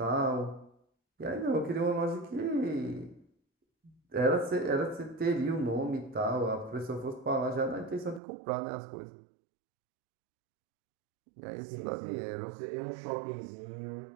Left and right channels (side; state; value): left; drops out; at 8.2 s